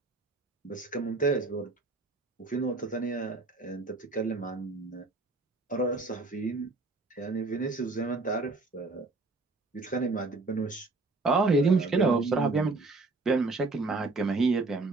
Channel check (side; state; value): left; quieter; 3.4 dB